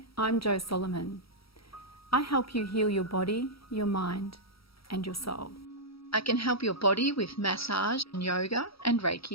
I'm Jo Solomon. I help you heal your body, your mind, and your soul. I can help your body with massage and yoga and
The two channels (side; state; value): right; late; 0.75 ms